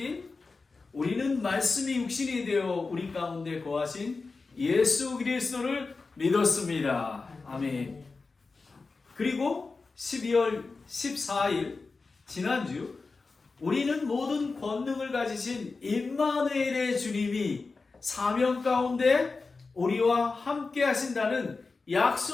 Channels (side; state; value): right; quieter; 4.1 dB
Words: 우리는 말씀이 육신이 되어 우리 가운데 거하신 예수 그리스도를 믿었습니다. 아멘. 그리고 12월 14일 지난주 우리는 모든 권능을 가지신 임마누엘의 주님이 사명 가운데 우리와 함께 하신다는